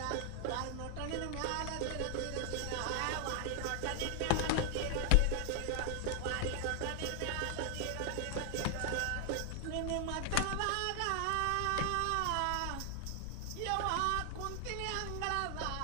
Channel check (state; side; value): different; both; correlation 0.00